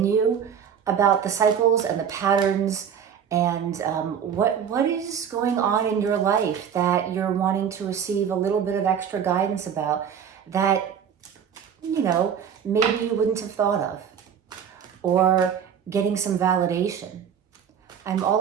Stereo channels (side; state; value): left; quieter; 8.0 dB